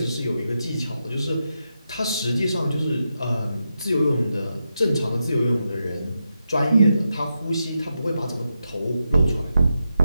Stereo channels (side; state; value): both; inverted; correlation -0.87